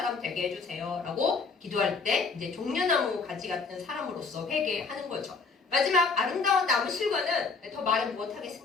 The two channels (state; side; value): quieter; right; 4.6 dB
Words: 되게 해주세요, 라고 기도할 때 이제 종려나무 가지 같은 사람으로서 회개하는 거죠. 마지막 아름다운 나무 실과는 더 말은